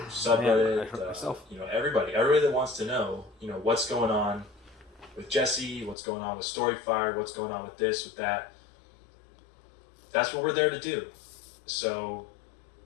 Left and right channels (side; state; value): right; drops out; at 6.0 s